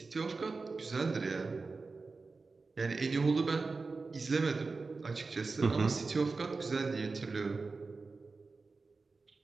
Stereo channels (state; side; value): quieter; left; 4.1 dB